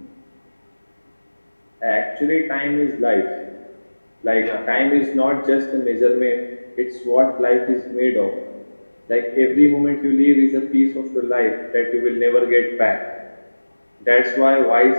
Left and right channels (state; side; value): inverted; both; correlation -1.00